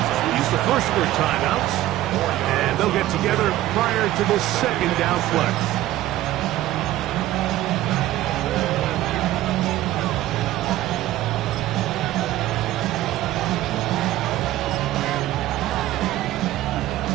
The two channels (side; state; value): left; quieter; 14.9 dB